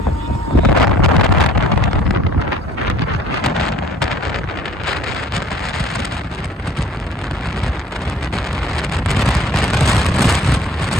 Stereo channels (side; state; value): both; normal; correlation 0.54